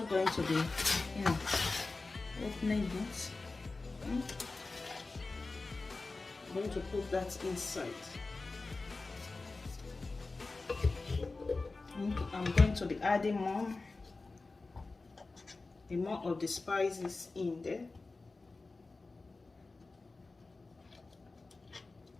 to be opening it. I'm going to put that inside. I'm going to be adding more of the spices in there.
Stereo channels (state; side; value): quieter; right; 3.6 dB